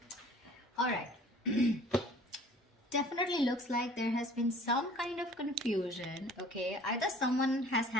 Alright, definitely looks like there has been some kind of confusion, okay? Either someone has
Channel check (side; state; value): both; normal; correlation 0.50